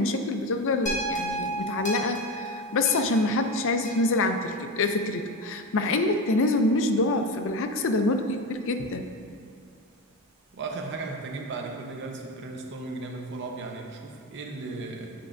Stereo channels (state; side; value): normal; both; correlation 0.20